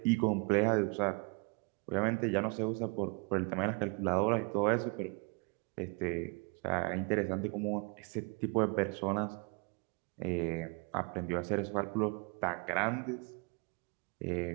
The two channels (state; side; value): quieter; left; 32.5 dB